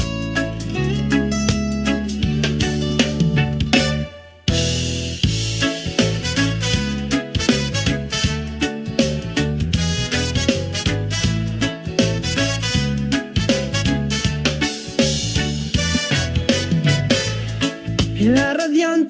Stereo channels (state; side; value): identical; both; correlation 1.00